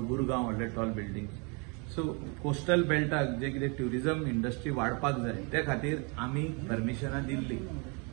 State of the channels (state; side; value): quieter; left; 32.8 dB